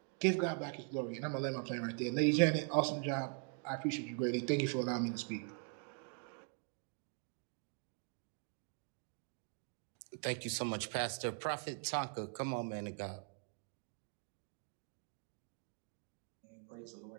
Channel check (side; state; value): left; quieter; 39.6 dB